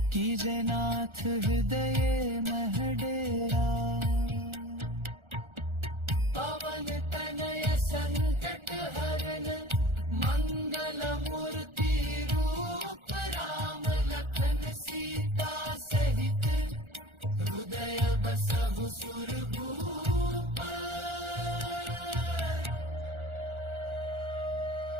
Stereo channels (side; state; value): left; late; 1.4 ms